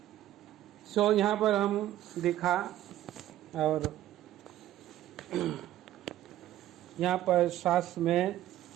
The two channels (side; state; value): left; quieter; 13.4 dB